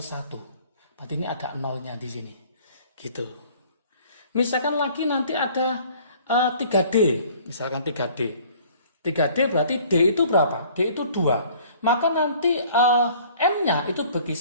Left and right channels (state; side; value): inverted; both; correlation -0.53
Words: 1. Berarti ini ada nolnya di sini. Gitu. Misalkan lagi nanti ada 3D. Misalkan 3D. 3D berarti D itu berapa? D itu 2. Maka nanti M-nya itu